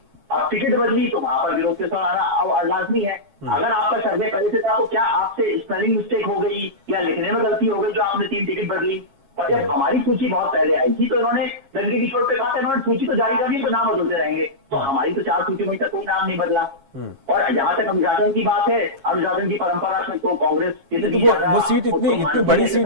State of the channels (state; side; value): late; left; 7.3 ms